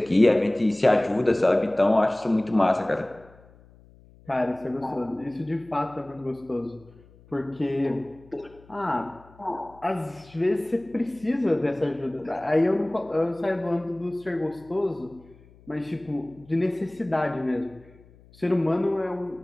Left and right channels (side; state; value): left; noise; hum, 26 dB below the sound